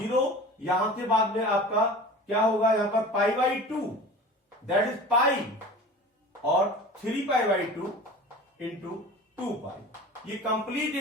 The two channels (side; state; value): both; normal; correlation 0.38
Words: यहां के बाद में आपका क्या होगा, यहां पर π/2 दैट इज पाई और 3π/2 इंटू 2π। ये कंप्लीट